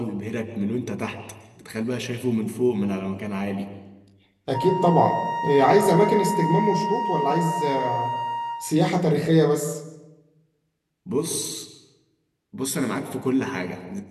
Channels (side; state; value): both; identical; correlation 1.00